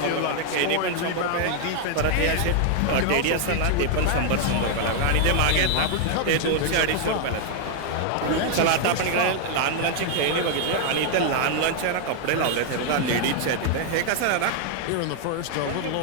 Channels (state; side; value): different; both; correlation 0.00